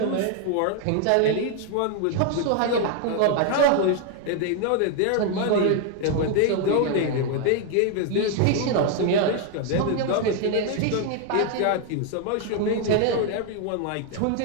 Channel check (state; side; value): different; both; correlation 0.01